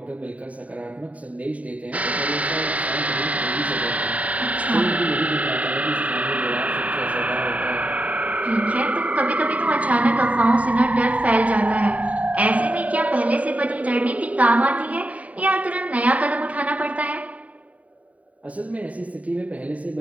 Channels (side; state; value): left; late; 0.069 ms